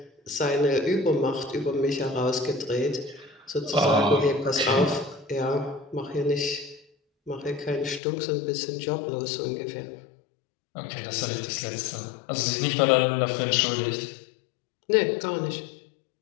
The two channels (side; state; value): right; drops out; at 8.0 s